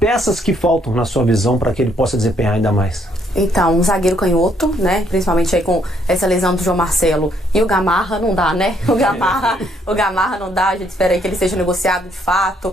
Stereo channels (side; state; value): both; normal; correlation 0.69